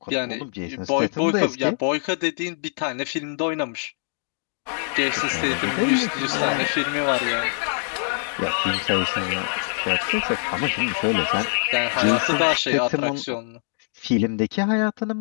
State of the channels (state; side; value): silent; right; 63 dB below the other